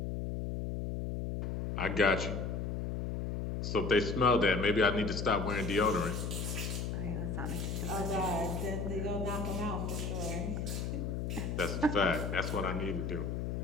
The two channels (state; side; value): noise; left; hum, 2 dB below the sound